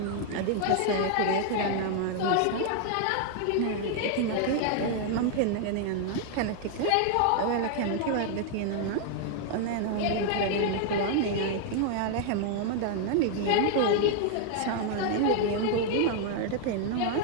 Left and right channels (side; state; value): both; different; correlation 0.00